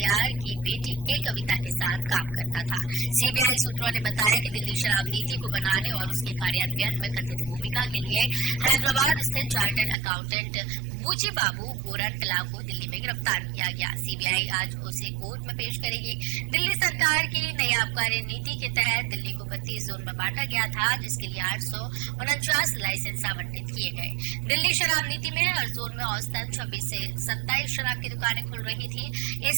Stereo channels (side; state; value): left; drops out; at 10.0 s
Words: की बेटी के कविता के साथ काम करता था। सीबीआई सूत्रों ने बताया कि दिल्ली शराब नीति को बनाने और उसके कार्यान्वयन में कथित भूमिका के लिए हैदराबाद स्थित चार्टर्ड अकाउंटेंट बुची बाबू गोरंटला को दिल्ली में गिरफ्तार किया गया। सीबीआई आज उसे कोर्ट में पेश करेगी। दिल्ली सरकार की नई आबकारी नीति के तहत दिल्ली को 32 जोन में बांटा गया था, जिसके लिए 849 लाइसेंस आवंटित किए गए। दिल्ली शराब नीति में हर जोन में औसतन 26 से 27 शराब की दुकानें खुल रही थी।